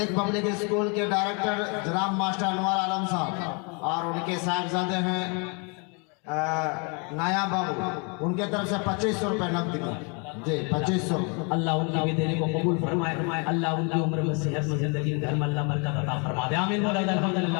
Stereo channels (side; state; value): right; quieter; 34.3 dB